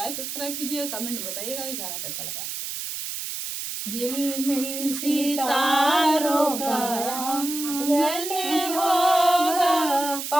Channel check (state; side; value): noise; right; hiss, 6 dB below the sound